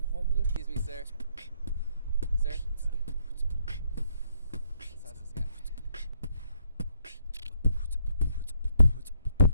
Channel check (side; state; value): both; inverted; correlation -0.70